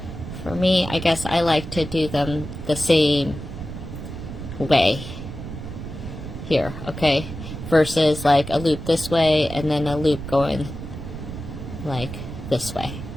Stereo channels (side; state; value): right; noise; rumble, 9 dB below the sound